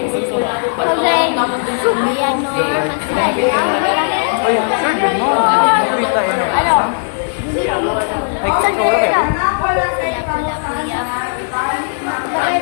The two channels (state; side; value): silent; right; 69 dB below the other